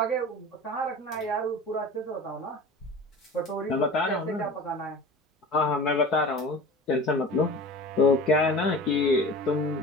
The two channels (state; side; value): normal; both; correlation 0.37